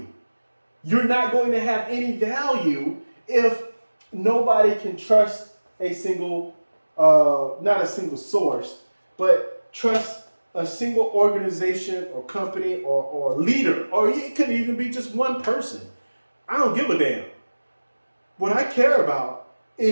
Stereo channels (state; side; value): inverted; both; correlation -1.00